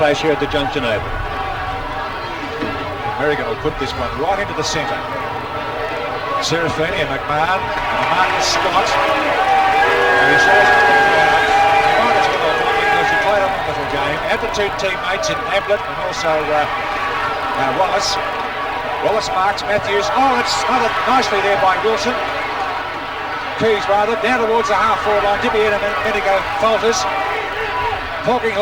here at the Junction Oval. Merrigan will put this one right into the centre. Serafini and McMahon. And Marcus Scott. And he shows it to the crowd. He might as well have won because he played a wonderful game. Had the two teammates in Ablett and also Wallace. Wallace marks Matthews. Oh, it's smothered nicely there by Wilson. Keys rather, down towards the half-forward line. Dippy and Medigo falters.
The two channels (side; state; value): both; identical; correlation 1.00